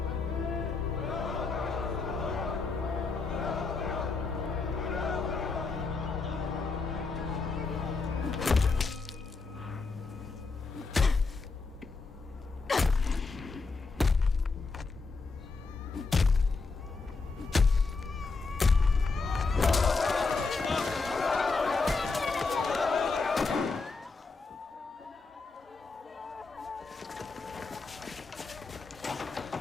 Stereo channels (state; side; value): quieter; right; 4.2 dB